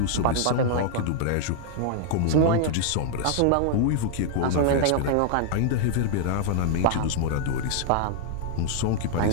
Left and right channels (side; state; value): both; different; correlation -0.01